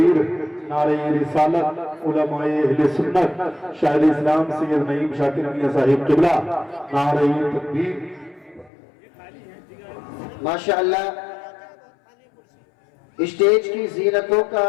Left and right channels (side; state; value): right; drops out; at 8.7 s